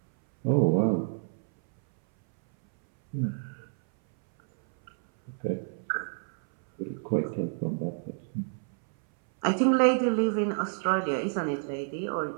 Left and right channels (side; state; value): left; silent; 59 dB below the other